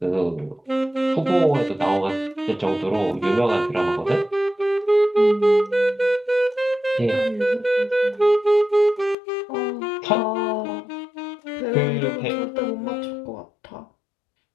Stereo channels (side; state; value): right; drops out; at 9.2 s